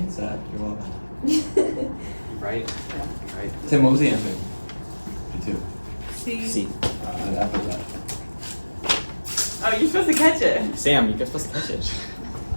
Zach. You're welcome. Right? Right. Tim, what was the answer? B2. C. I put that. Oh, you're supposed to catch it. Sam, you're supposed to catch it.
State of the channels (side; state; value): both; inverted; correlation -1.00